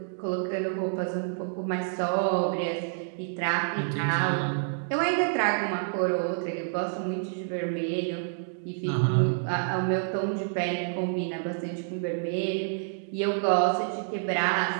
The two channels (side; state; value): left; silent; digital silence